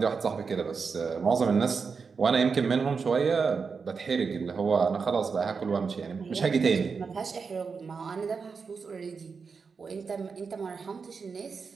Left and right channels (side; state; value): left; quieter; 5.3 dB